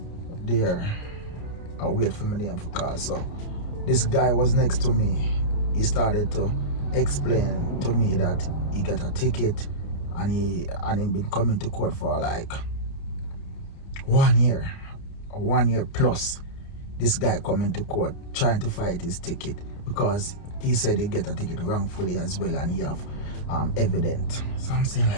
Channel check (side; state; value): right; late; 30 ms